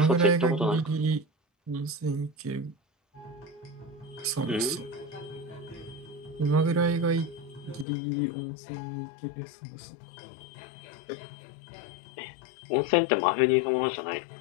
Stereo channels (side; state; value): right; drops out; at 7.9 s